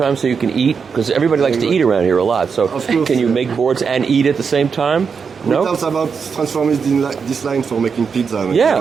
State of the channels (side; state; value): left; quieter; 5.9 dB